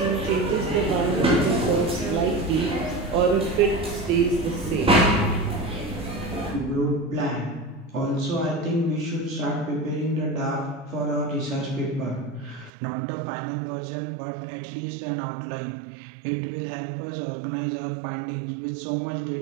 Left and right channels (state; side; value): drops out; left; at 12.7 s